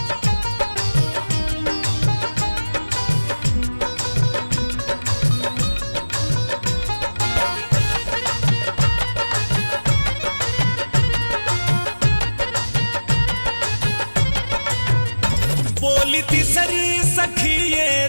बोली तीसरी सखी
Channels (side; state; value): both; inverted; correlation -1.00